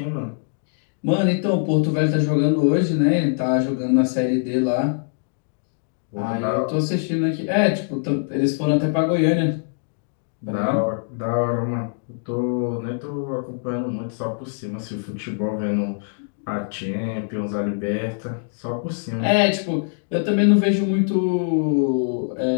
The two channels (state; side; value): silent; right; digital silence